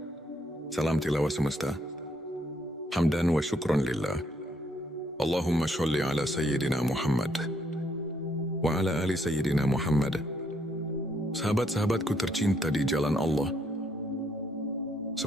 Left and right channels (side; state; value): both; normal; correlation 0.72